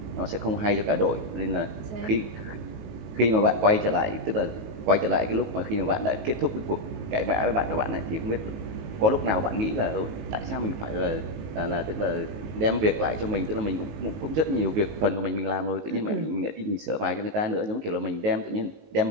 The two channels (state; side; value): late; left; 19 ms